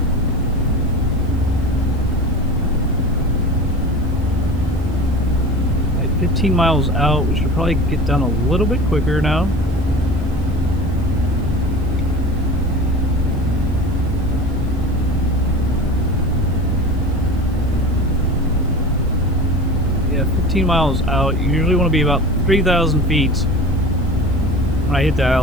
15 miles out. We should probably get down a little bit quicker now. Yeah, 15 miles out. You usually want to be about 3,000 feet when I hit the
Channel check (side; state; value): right; noise; hiss, 28 dB below the sound